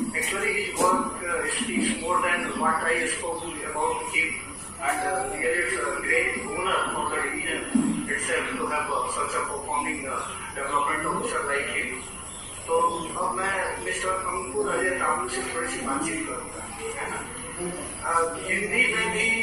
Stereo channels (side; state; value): both; identical; correlation 1.00